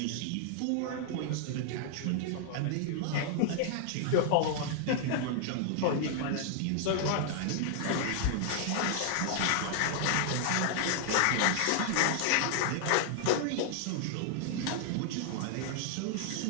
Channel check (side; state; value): both; different; correlation 0.00